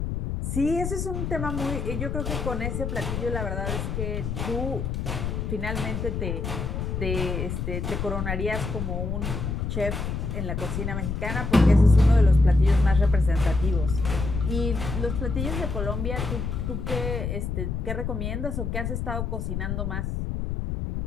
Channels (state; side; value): noise; left; rumble, 3 dB below the sound